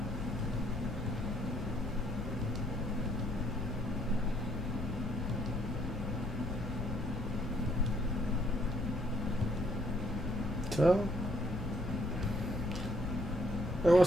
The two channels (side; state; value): left; noise; rumble, 5 dB below the sound